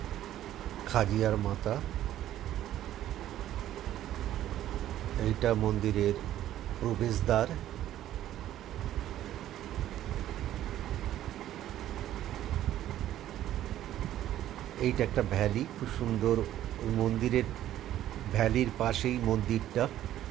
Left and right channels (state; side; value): quieter; left; 12.6 dB